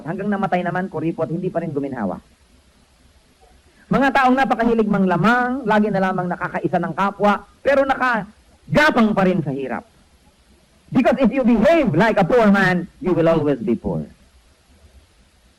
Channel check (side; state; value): both; identical; correlation 1.00